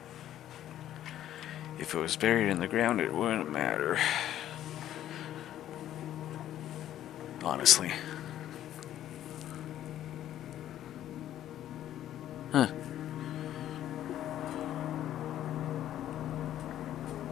If it was buried in the ground, it wouldn't matter. Honestly. Huh.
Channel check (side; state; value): right; quieter; 12.0 dB